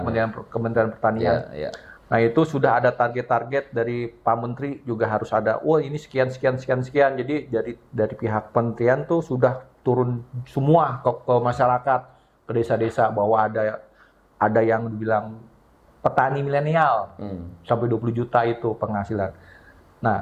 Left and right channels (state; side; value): identical; both; correlation 1.00